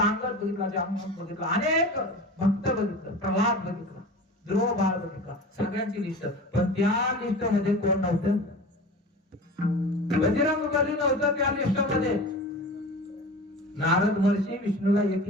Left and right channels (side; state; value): both; normal; correlation 0.35